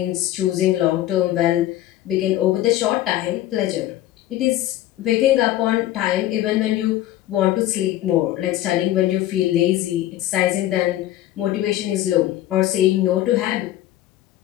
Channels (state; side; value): quieter; right; 14.2 dB